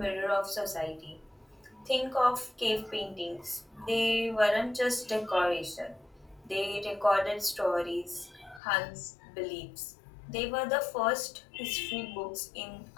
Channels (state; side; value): drops out; right; at 8.6 s